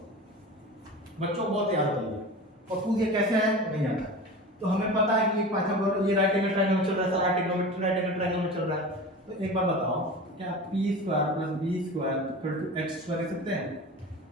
बच्चों को बहुत याद है और पूछ ये कैसे है नहीं आता। तो हमें पता है कि पाइथागोरस ये राइट एंगल ट्रायंगल में चल रहा है, सारा ट्रिग्नोमेट्री राइट एंगल ट्रायंगल में चल रहा है। तो एक बार बताओ, क्या p square plus b square equal to x square लिख सकते हैं?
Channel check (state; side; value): normal; both; correlation 0.33